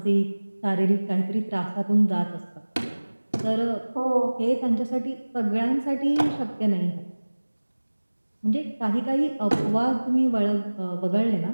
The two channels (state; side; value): inverted; both; correlation -1.00